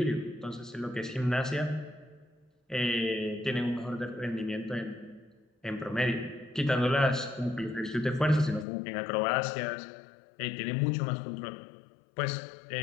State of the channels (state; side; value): drops out; right; at 8.7 s